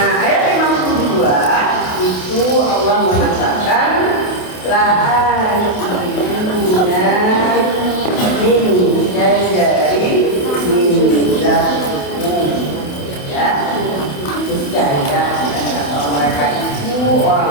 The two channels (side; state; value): right; late; 28 ms